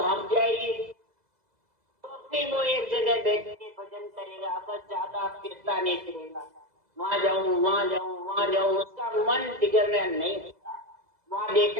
जाएगी, तो फिर वो एक जगह बैठ के भजन करेगा, बस ज्यादा फिरता नहीं फिरेगा, वहां जाऊं वहां जाऊं वहां जाऊं, उसका मन बिगड़ना नहीं होता। वहां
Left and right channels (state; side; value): late; left; 2.0 ms